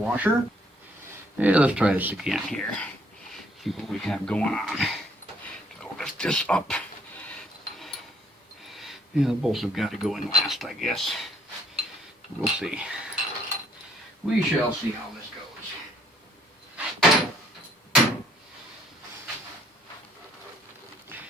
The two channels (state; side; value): normal; both; correlation 0.64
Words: Yeah, let's try this again here. See what we have going on. So lift this up. Yeah, the bolts have got to go in last, I guess. We'll see. We shall see how this goes.